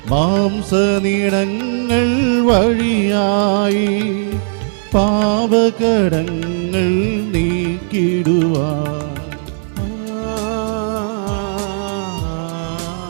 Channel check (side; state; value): left; silent; digital silence